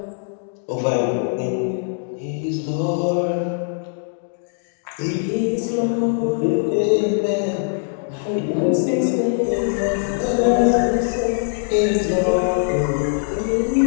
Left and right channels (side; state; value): right; silent; 65 dB below the other